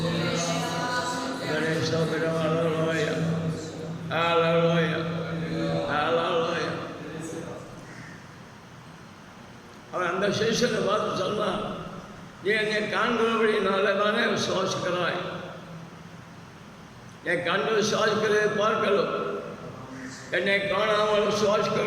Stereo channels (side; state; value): both; identical; correlation 1.00